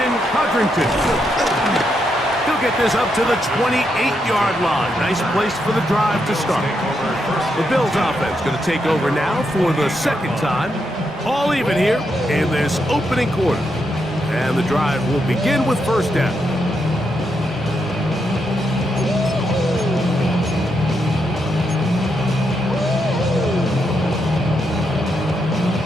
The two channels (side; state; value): both; normal; correlation 0.81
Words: Codrington. He'll get this up to the 28-yard line. Nice place for the drive to start. The Bills offense going to take over now for the 2nd time. All even here in this opening quarter. And the drive will begin with 1st down.